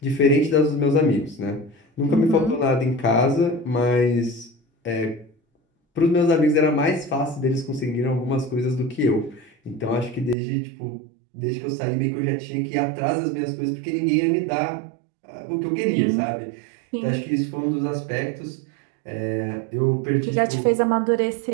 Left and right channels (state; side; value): drops out; left; at 10.4 s